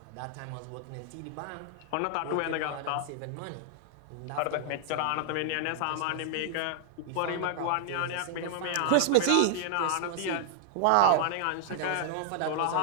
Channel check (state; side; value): different; both; correlation 0.00